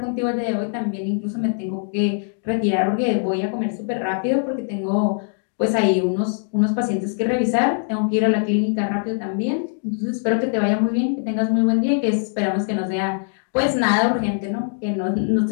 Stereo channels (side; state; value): right; silent; 64 dB below the other